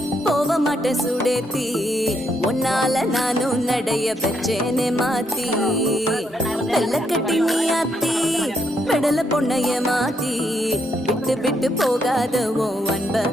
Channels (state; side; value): normal; both; correlation 0.76